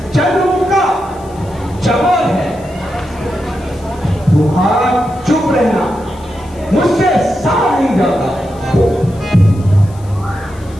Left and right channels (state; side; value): noise; left; hiss, 26 dB below the sound